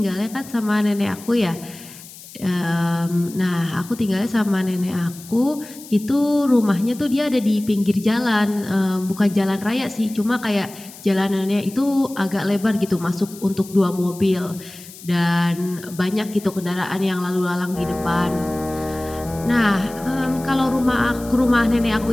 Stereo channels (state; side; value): noise; left; hiss, 18 dB below the sound